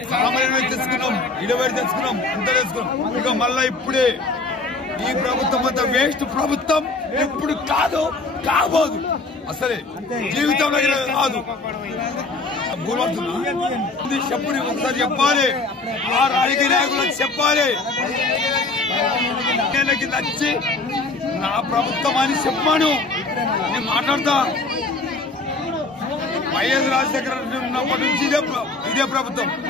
సామాన్యులు తెచ్చుకున్నాం 20 తెచ్చుకున్నాం అంత తెచ్చుకున్నాం ఇక మళ్ళా ఇప్పుడే ఈ ప్రభుత్వం అంతా వేస్ట్ ప్రభుత్వం ఎప్పుడు కాదు కాబోదు అసలే జీవితంలో కాదు చెప్పు ఒకసారి చెప్పాలి ఆ రాజకీయ నాయకులకు చెప్పాలి నచ్చి నా ప్రభుత్వం అని చెప్పాను నేను మాట్లాడతా వైఎస్ రాజశేఖర ఉన్నప్పటి నుంచి ఇదే ప్రభుత్వం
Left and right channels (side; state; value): right; quieter; 3.5 dB